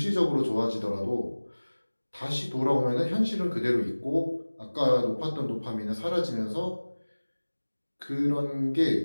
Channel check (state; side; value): inverted; both; correlation -1.00